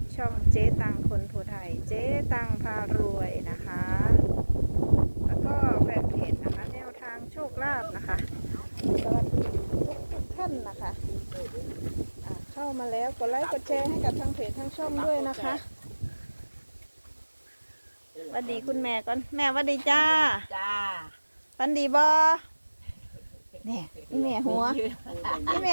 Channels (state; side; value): inverted; both; correlation -1.00